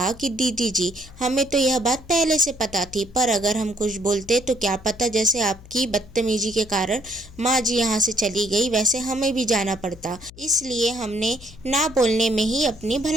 कि दीदी जी, हमें तो यह बात पहले से पता थी, पर अगर हम कुछ बोलते तो क्या पता जैसे आपकी बदतमीजी के कारण माँ जी यहाँ से चली गई वैसे हमें भी जाना पड़ता। इसलिए हमने ना बोलने में ही अपनी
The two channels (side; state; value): left; noise; hum, 20 dB below the sound